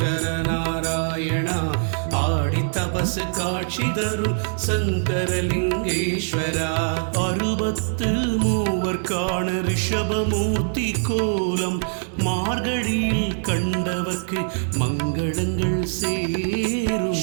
நாராயணா ஆடி தபசு காட்சி தரும் சங்கரலிங்கேஸ்வரா. 63 ரிஷபமூர்த்தி கோலம் மார்கழியில் கண்டவர்க்கு மங்களங்கள் சேரும்.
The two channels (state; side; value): silent; left; digital silence